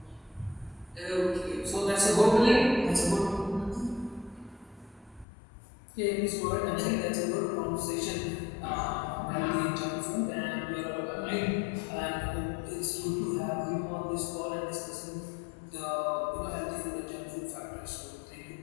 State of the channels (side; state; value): right; drops out; at 5.2 s